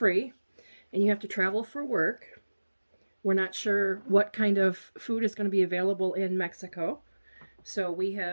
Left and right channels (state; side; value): inverted; both; correlation -1.00